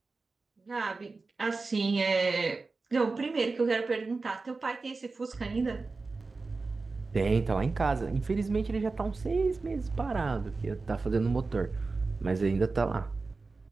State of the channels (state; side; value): quieter; left; 3.9 dB